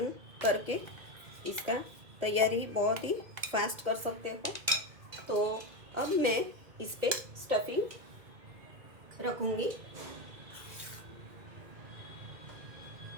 करके इसका तैयारी बहुत ही फास्ट कर सकते हो। तो अब मैं इस पे स्टफिंग रखूँगी।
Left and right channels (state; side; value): late; left; 2.1 ms